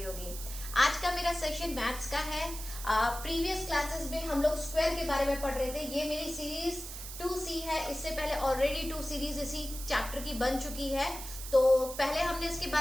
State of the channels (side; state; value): right; noise; hiss, 10 dB below the sound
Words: होगी। आज का मेरा सेशन मैथ्स का है। प्रीवियस क्लासेस में हम लोग स्क्वायर के बारे में पढ़ रहे थे। ये मेरी सीरीज 2C है। इससे पहले ऑलरेडी 2 सीरीज इसी चैप्टर की बन चुकी है। तो पहले हमने इसके